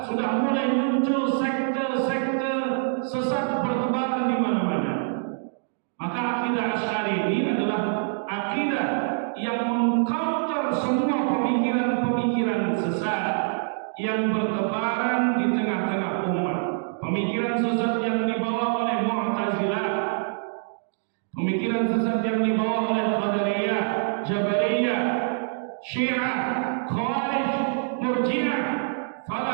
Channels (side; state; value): left; silent; digital silence